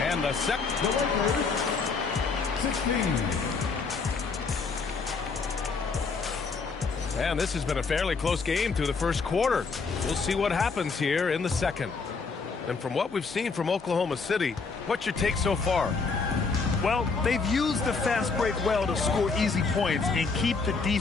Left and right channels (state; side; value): quieter; right; 4.7 dB